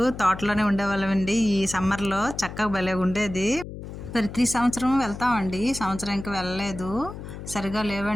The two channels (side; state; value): left; noise; hum, 11 dB below the sound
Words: తోటలోనే ఉండేవాళ్ళమండి. ఈ సమ్మర్‌లో చక్కగా భలేగుండేది. ప్రతి సంవత్సరం వెళ్తామండి. ఈ సంవత్సరం ఇంక వెళ్ళలేదు. సరిగ్గా